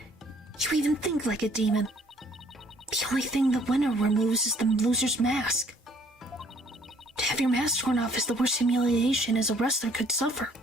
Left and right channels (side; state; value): both; normal; correlation 0.60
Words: You even think like a demon. The only thing the winner removes is the loser's mask. To have your mask torn off is the worst humiliation as a wrestler could suffer.